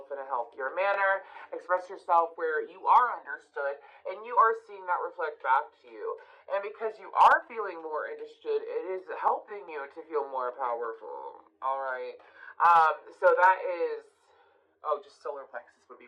in a healthier manner, express yourself where you are understood, and you are seeing that reflect back to you. And because you are feeling more understood, it is helping you to feel more powerful. Alright. So that is... Oh, just solar plexus would be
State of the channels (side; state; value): both; identical; correlation 1.00